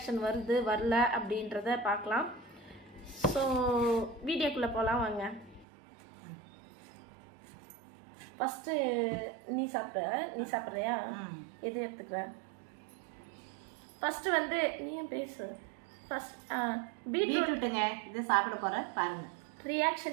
வருது வரல அப்படின்றத பார்க்கலாம். ஸோ வீடியோக்குள்ளே போகலாம் வாங்க. ஃபஸ்ட்டு நீ சாப்பிட்றியா? எது எடுத்துக்கிற? ஃபஸ்ட்டு வந்து நீயும் பேசு. ஃபர்ஸ்ட் பீட்ரூட்டுங்க, இது சாப்பிட போகிறேன் பாருங்க.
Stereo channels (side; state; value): left; drops out; at 5.7 s